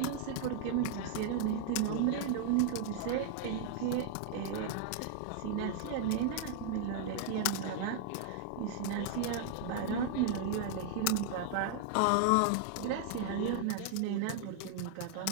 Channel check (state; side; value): different; both; correlation -0.01